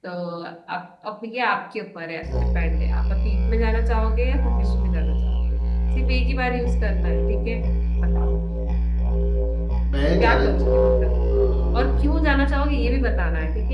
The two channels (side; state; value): both; identical; correlation 1.00